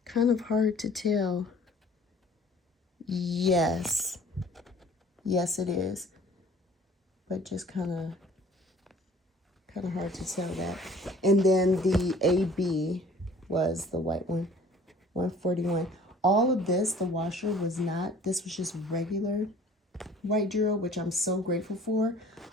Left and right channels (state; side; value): normal; both; correlation 0.51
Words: Kind of hard to tell. Yes, it is, but just kind of hard to tell that. And then the AB was the white one, 141. All of this, the washer was not. This was just regular white drill, which I'm so grateful for,